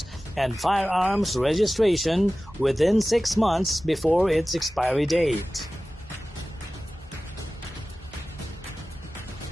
and firearms registration within 6 months before its expiry date.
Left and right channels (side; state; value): both; normal; correlation 0.96